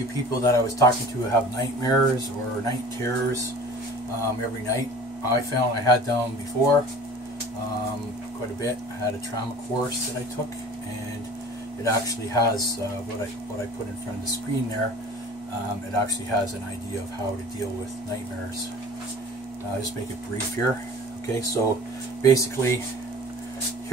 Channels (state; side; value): normal; both; correlation 0.43